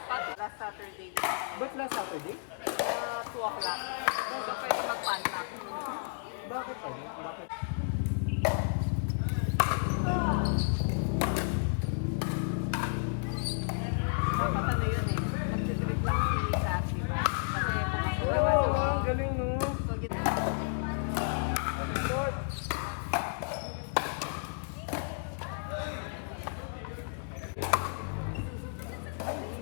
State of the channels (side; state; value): right; silent; digital silence